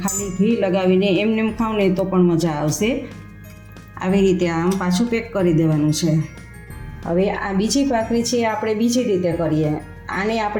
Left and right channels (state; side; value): identical; both; correlation 1.00